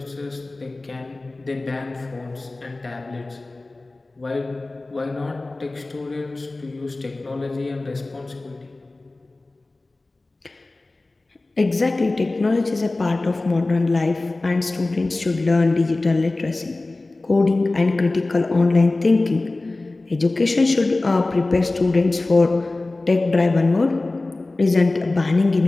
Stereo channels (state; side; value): quieter; right; 3.1 dB